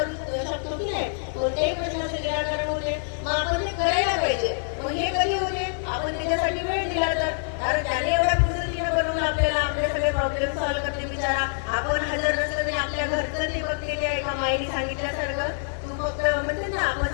शकतो की नाही, कोणत्याही प्रश्नाचं निराकरण होते. मग आपण ते करायला पाहिजे. मग हे कधी होते, आपण त्याच्यासाठी वेळ दिला तर. कारण त्याने एवढ्या पद्धतीनं बनवलं आपल्याला, आपले सगळे प्रॉब्लेम सॉल्व्ह करते बिचारा. आपण हजर नसलं तरी आपल्या घरचं ते बघलेले आहे. एका माईने सांगितल्यासारखं, तू फक्त म्हणते ना, आपण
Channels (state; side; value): silent; right; digital silence